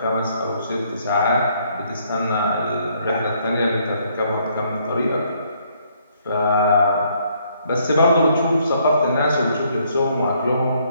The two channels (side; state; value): both; inverted; correlation -0.68